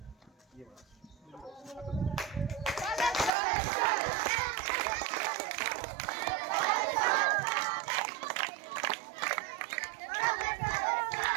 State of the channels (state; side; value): drops out; left; at 3.3 s